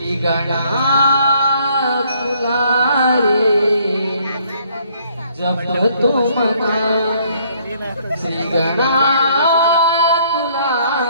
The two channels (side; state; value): both; inverted; correlation -0.64